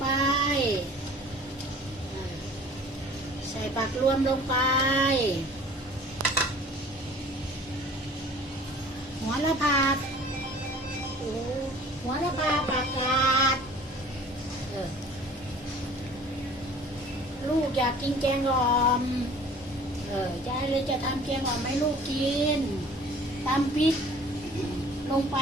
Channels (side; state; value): both; normal; correlation 0.48